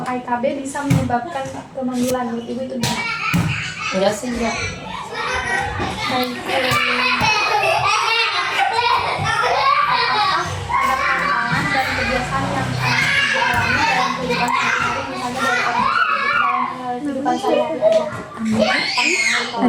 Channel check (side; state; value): both; identical; correlation 1.00